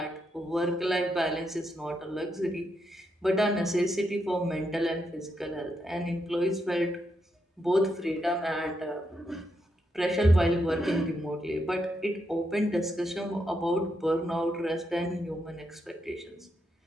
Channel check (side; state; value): both; normal; correlation 0.81